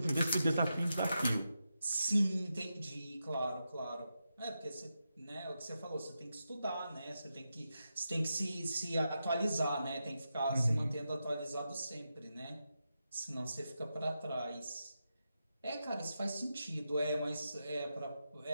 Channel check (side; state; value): both; inverted; correlation -0.88